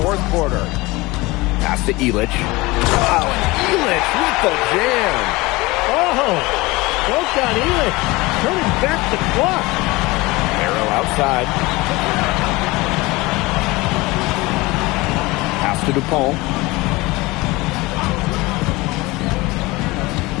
4th quarter. Pass to Illich. Wow, and Illich with the jam. Oh, well done, Illich. Turning back the clock. Arrow outside. Pass to Dupont.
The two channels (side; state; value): right; quieter; 22.0 dB